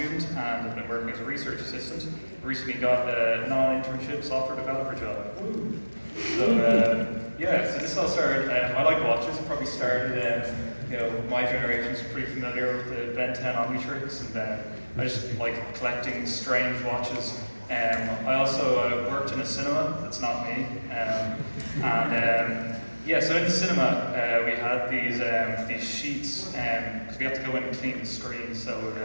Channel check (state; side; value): inverted; both; correlation -1.00